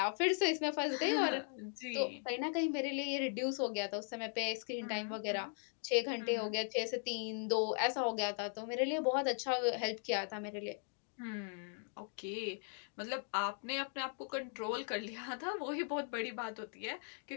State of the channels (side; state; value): right; silent; 52 dB below the other